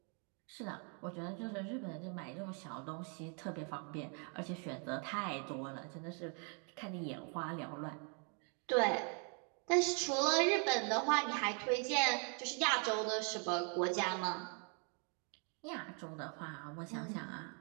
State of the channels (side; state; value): left; quieter; 38.9 dB